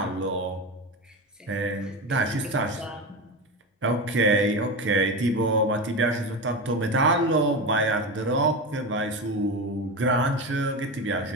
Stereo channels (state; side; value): normal; both; correlation 0.21